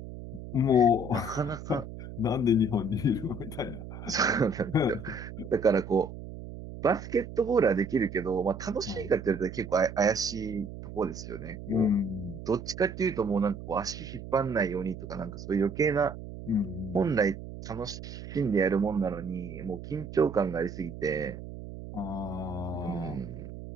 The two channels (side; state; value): right; noise; hum, 11 dB below the sound